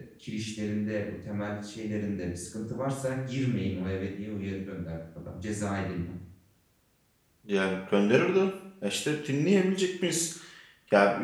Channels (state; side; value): identical; both; correlation 1.00